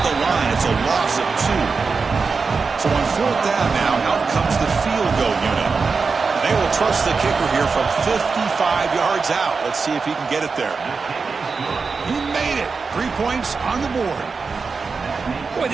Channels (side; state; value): left; quieter; 4.8 dB